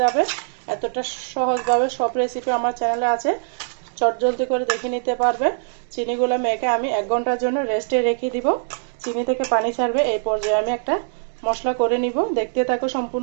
যাবে। এতটা সহজভাবে সব রেসিপি আমার চ্যানেলে আছে, চটজলদি করে দেখে নিতে পারবে। চিনিগুলো মেখে আমি 1 ঘন্টার জন্য রেস্টে রেখে দিব। চিনি থেকে পানি ছাড়বে। এই পর্যায়ে আমি একটা মশলা করে নিব, দেখতে থাকো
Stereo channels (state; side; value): silent; left; digital silence